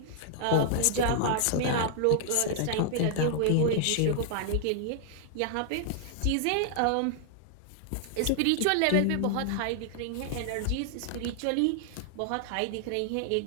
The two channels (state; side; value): different; both; correlation -0.01